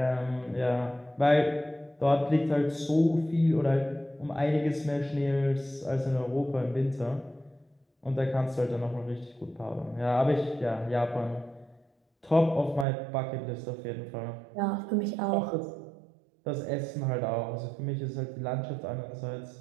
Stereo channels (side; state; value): left; drops out; at 12.9 s